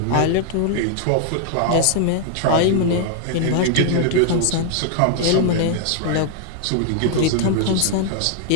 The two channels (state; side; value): different; both; correlation 0.00